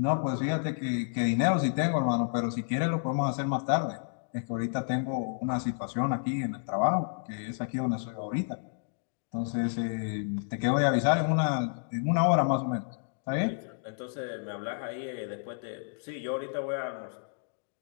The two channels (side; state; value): right; silent; digital silence